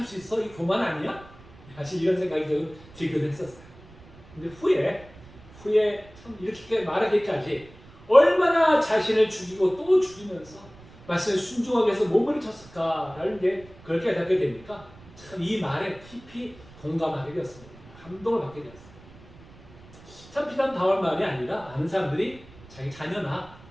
수 있어? 이 교만 아니야? 사실 이런 생각이 좀 들기도 했었어요. 근데 후에 참 이렇게 말하기까지 얼마나 자신을 죽이고 또 죽이면서 말씀에 순종하기 위해서 몸을 쳤을까라는 게 그걸 깨닫게 되니까 참 이 말에 깊이 공감하게 되었습니다. 감동을 받게 되었어요. 참 비단 바울 말이 아니라 많은 사람들이 자기 자녀나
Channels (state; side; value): noise; right; rumble, 22 dB below the sound